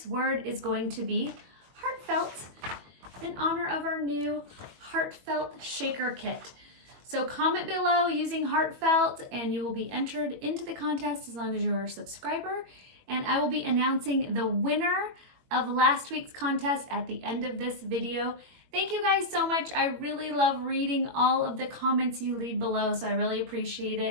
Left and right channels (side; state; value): left; late; 21 ms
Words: word is going to be heartfelt in honor of our new Heartfelt Shaker kit. So comment below using heartfelt and you will be entered into the contest as long as you're a subscriber. And I will be announcing the winner of last week's contest at the end of this video. Thank you guys so much. I really love reading all of the comments you leave below, so I really appreciate